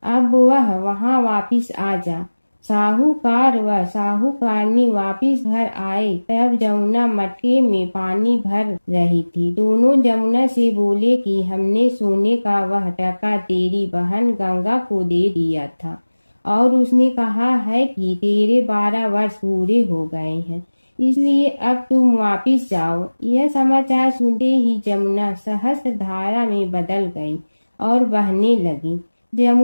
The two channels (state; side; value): inverted; both; correlation -1.00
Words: अब वह वहां वापिस आ जा। साहूकार व साहूकारनी वापिस घर आए तब जमुना मटके में पानी भर रही थी। दोनों जमुना से बोले कि हमने सोने का वह टका तेरी बहन गंगा को दे दिया था और उसने कहा है कि तेरे 12 वर्ष पूरे हो गए हैं, इसलिए अब तुम वापिस जाओ। यह समाचार सुनते ही जमुना सहस्त्र धारा में बदल गई और बहने लगी।